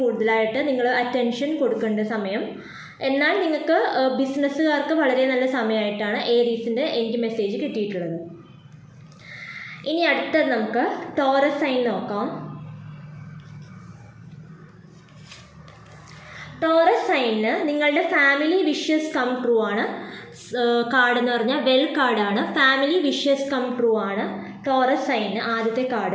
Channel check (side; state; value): both; identical; correlation 1.00